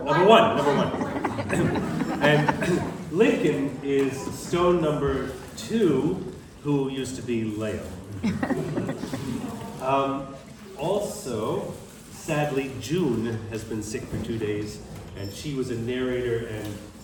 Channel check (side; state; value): both; identical; correlation 1.00